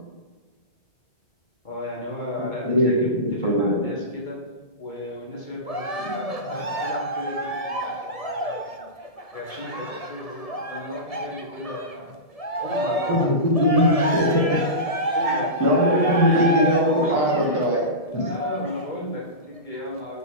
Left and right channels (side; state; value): right; late; 1.7 ms